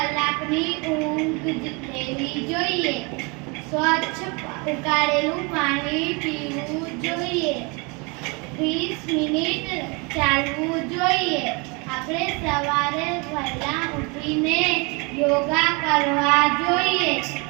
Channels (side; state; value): left; quieter; 29.9 dB